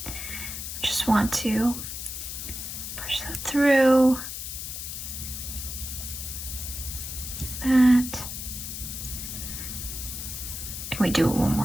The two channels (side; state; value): left; noise; hiss, 7 dB below the sound